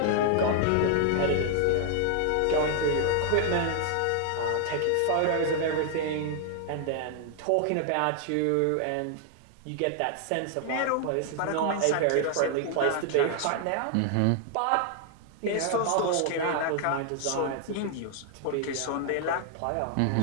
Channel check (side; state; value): both; different; correlation 0.00